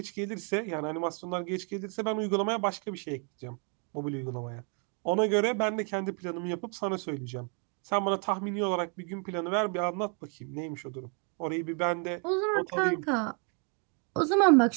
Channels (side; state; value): left; quieter; 37.8 dB